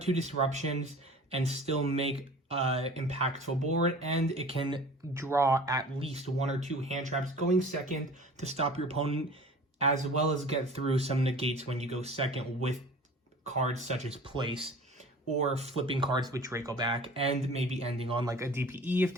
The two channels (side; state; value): both; normal; correlation 0.42